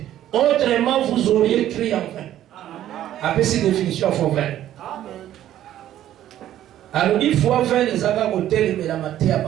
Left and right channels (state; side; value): quieter; left; 12.3 dB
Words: autrement vous auriez crié en vain. Après cette définition, il faut vain. Alors, il faut vain les avoir au tel mais la matière à